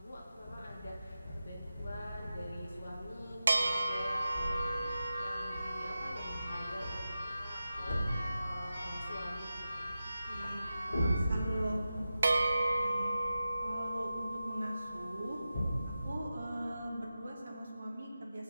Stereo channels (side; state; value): both; inverted; correlation -0.93